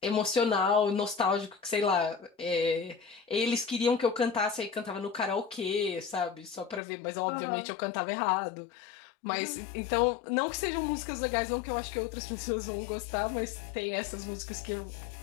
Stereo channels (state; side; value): drops out; right; at 6.8 s